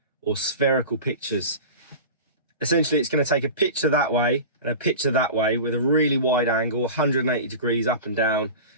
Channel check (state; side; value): inverted; both; correlation -0.32